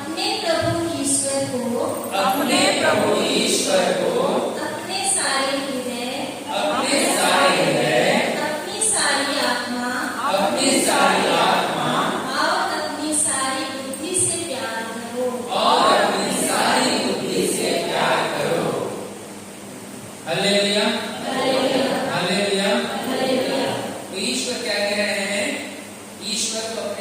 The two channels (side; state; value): both; identical; correlation 1.00